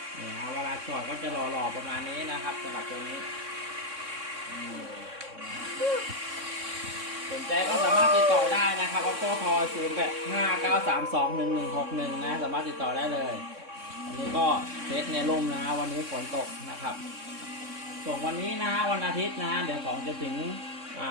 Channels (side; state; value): left; late; 3.6 ms